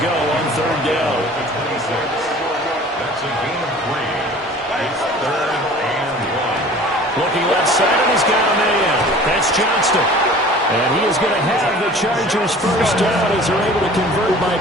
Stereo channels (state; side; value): normal; both; correlation 0.45